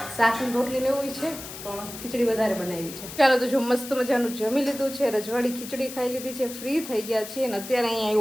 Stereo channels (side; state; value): left; noise; hiss, 11 dB below the sound